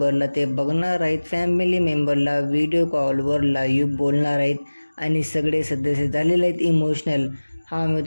ते बघणार आहेत. फॅमिली मेंबरला व्हिडिओ कॉलवर लाईव्ह बोलणार आहेत आणि सगळे सदस्य झालेले आहेत इमोशनल.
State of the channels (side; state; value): both; inverted; correlation -1.00